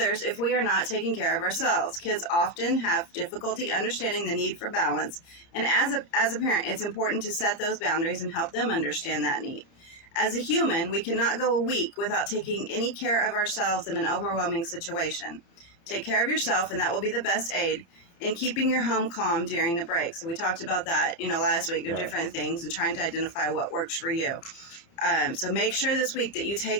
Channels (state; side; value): late; right; 29 ms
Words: if we are not taking care of ourselves. Kids often have difficulty understanding the need for balance, and as a parent, it's important to set those boundaries and help them understand that need. As a human, we cannot go a week without taking any care of ourselves in an overwhelming situation. Take care of yourself, and that will be the best aid in keeping your home calm during the break. So we talked about that, last week, of different things and trying to identify what works for you. So make sure this week that you